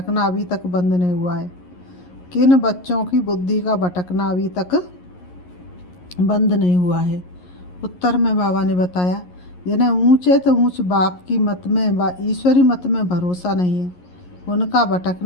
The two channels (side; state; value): right; late; 11 ms